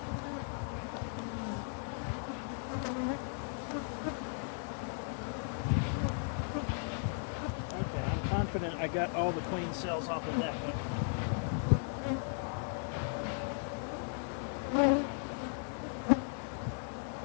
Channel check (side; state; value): right; silent; 53 dB below the other